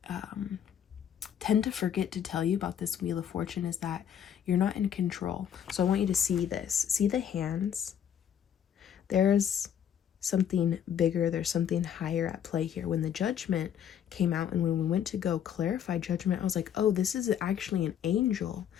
tend to forget to tell you about this Wheel of Fortune is that you're not in control. So I want you to see this. See the hands? There's something bigger. There's something higher at play here. When the Judgment came out and when we went to go clarify Judgment, I was like, oh, this is actually an angel.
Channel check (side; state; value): right; quieter; 9.0 dB